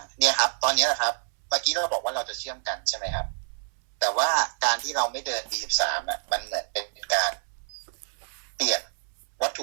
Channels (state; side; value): silent; left; 60 dB below the other